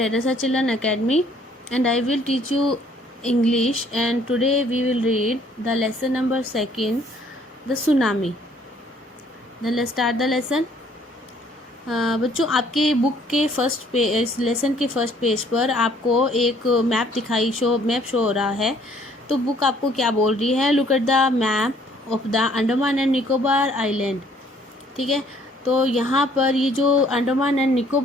Children Academy, and I will teach you English. And today we will read the lesson number 2, the tsunami. Then let's start the lesson. बच्चों, आपके book के first page, इस lesson के first page पर आपको एक map show हो रहा है. तो बुक आपको क्या बोल रही है? Look at the map of the Andaman and Nicobar island. ठीक है, तो यहाँ पर ये जो अंडमान एंड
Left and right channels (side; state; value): both; normal; correlation 0.61